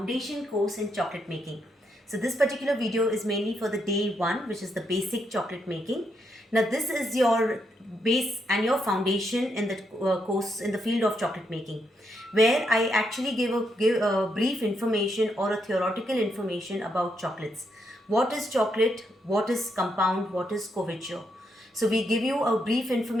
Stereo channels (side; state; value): both; normal; correlation 0.79